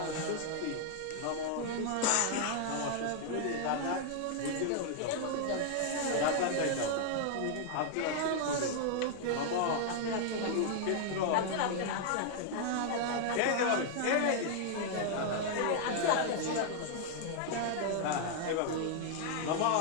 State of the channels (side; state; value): both; different; correlation 0.00